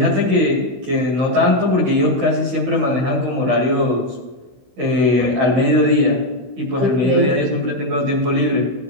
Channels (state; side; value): late; left; 15 ms